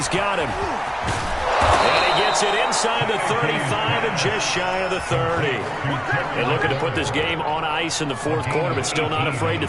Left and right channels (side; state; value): both; identical; correlation 1.00